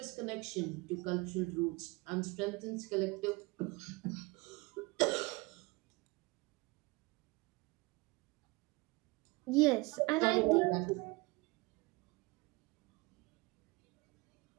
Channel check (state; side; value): quieter; left; 24.6 dB